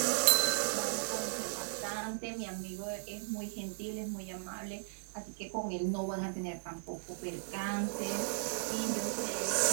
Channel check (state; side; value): silent; left; digital silence